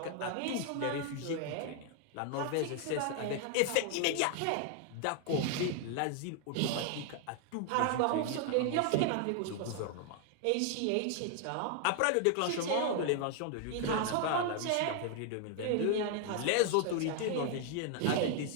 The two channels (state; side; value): different; both; correlation 0.00